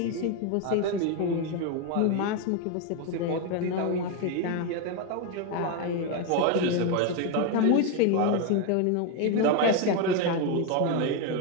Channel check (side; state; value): both; different; correlation 0.02